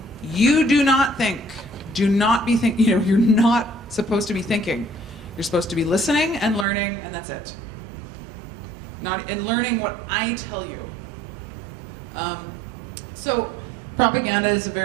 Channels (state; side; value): drops out; left; at 6.7 s